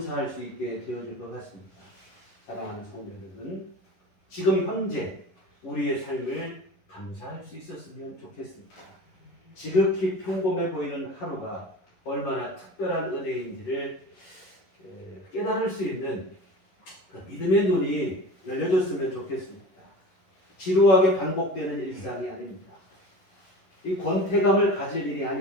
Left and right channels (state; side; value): late; right; 11 ms